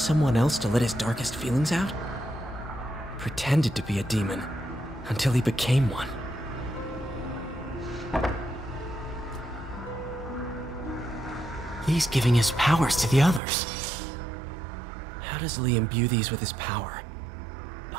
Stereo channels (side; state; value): left; drops out; at 13.4 s